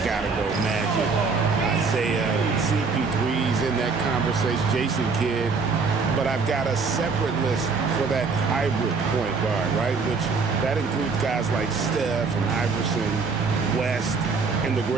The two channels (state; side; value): quieter; left; 4.7 dB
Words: gotta go Magic. Isaiah, CP3's in that conversation, Jason Kidd. But I've got a separate list for that hybrid point guard, right? Which that includes guys like Steph and Iverson, West, and the